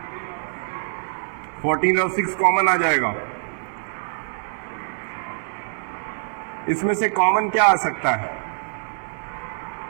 14 और 6 कॉमन आ जाएगा। इसमें से कॉमन क्या आ सकता है,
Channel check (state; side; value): silent; left; 62 dB below the other